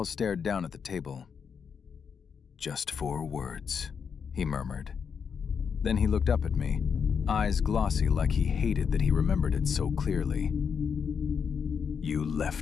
stared down at the table. "Just 4 words," he murmured. Then he looked up at me, eyes glossy like he hated that he remembered it so clearly. "You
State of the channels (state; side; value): quieter; right; 6.6 dB